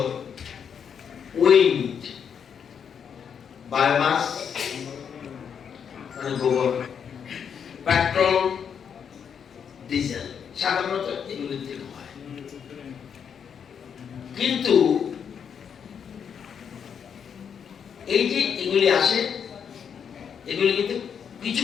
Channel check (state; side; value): quieter; right; 7.4 dB